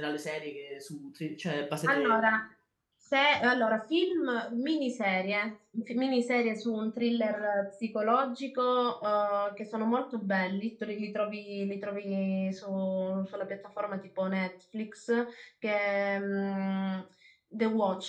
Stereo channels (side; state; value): both; identical; correlation 1.00